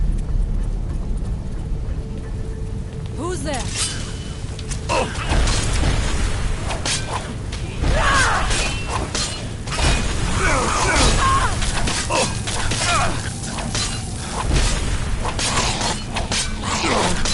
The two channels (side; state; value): both; identical; correlation 1.00